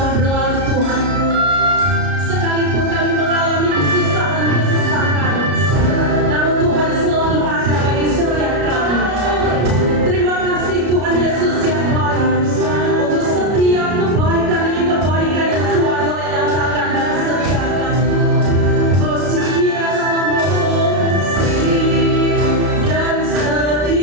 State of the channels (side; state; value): left; late; 33 ms